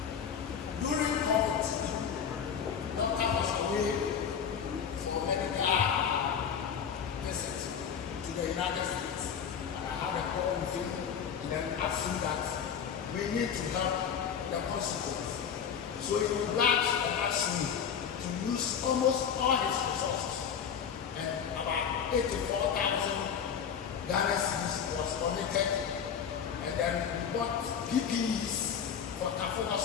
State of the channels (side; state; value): right; quieter; 7.6 dB